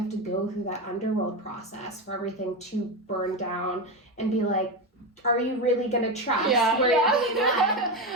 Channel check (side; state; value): both; normal; correlation 0.15